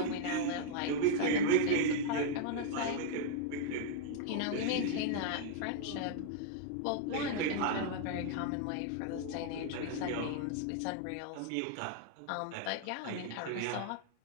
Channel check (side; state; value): both; different; correlation 0.00